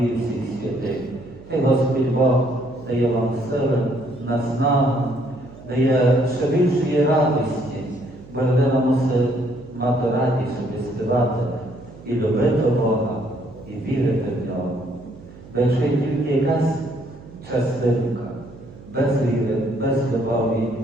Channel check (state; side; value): noise; right; hum, 19 dB below the sound